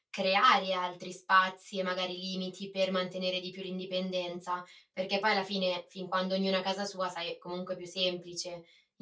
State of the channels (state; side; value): identical; both; correlation 1.00